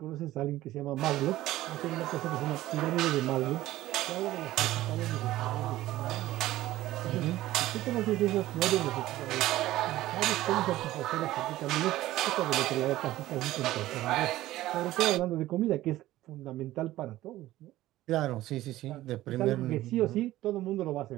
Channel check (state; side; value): quieter; left; 15.6 dB